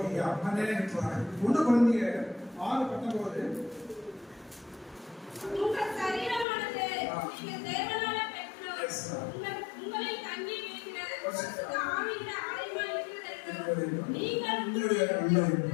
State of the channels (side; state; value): right; drops out; at 6.5 s